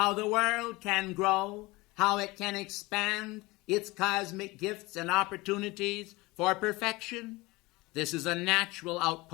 the world can grow, how it can expand its cosmic gifts and opportunities for perfection? This is a natural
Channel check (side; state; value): right; quieter; 22.3 dB